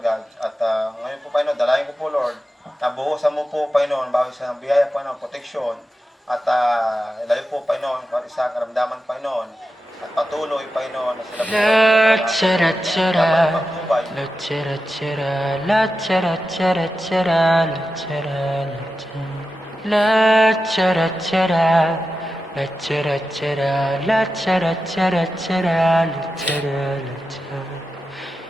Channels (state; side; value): normal; both; correlation 0.91